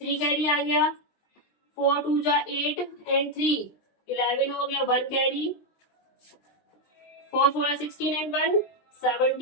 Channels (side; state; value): right; late; 20 ms